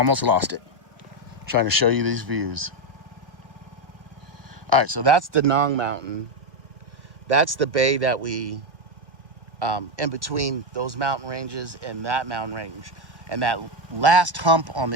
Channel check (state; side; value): late; left; 1.4 ms